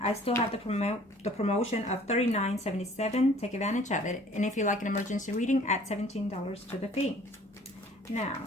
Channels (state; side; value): normal; both; correlation 0.53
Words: still have the promotion of $39.77. Take advantage of it. And if you like an emergency reading, add $17 to the fee.